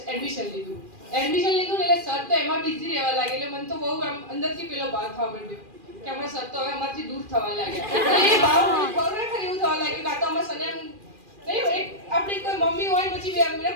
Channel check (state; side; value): late; left; 2.4 ms